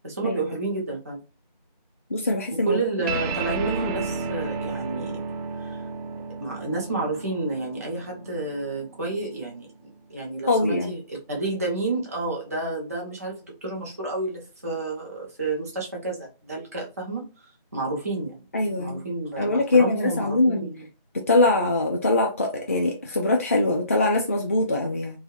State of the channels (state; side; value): inverted; both; correlation -0.52